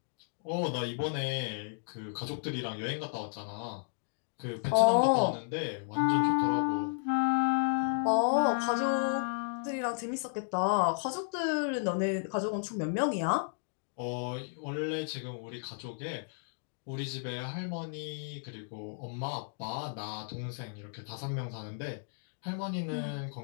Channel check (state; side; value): silent; right; digital silence